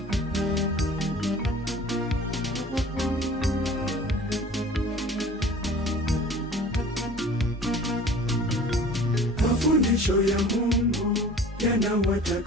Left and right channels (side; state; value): both; normal; correlation 0.45